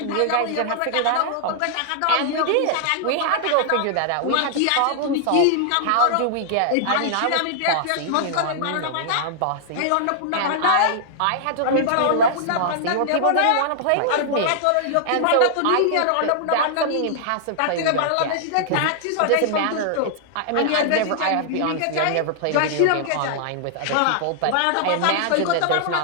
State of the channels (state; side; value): different; both; correlation -0.01